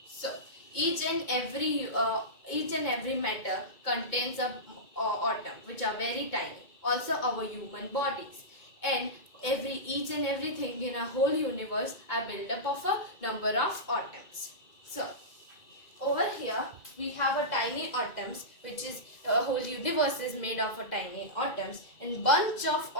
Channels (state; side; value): late; right; 2.2 ms